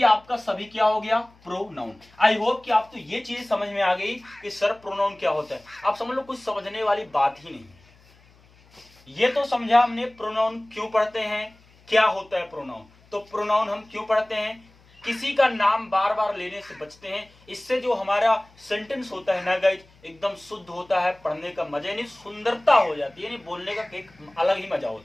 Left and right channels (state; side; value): noise; left; hum, 29 dB below the sound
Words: आपका सभी क्या हो गया प्रोनाउन। आई होप कि आपको ये चीज समझ में आ गई कि सर प्रोनाउन क्या होता है। आप समझ लो कुछ समझने वाली बात ही नहीं, ये तो समझा हमने प्रोनाउन क्यों पढ़ते हैं, क्या होता है प्रोनाउन, तो प्रोनाउन हम क्यों पढ़ते हैं, किसी का नाम बार बार लेने से बचते हैं, इससे जो हमारा सेंटेंस होता है ना गाइस एकदम शुद्ध होता है, पढ़ने का मजा यानी सुंदरता हो जाती है, यानी बोलने का एक अलग ही मजा